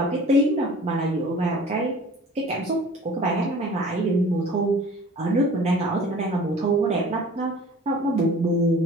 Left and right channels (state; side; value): normal; both; correlation 0.45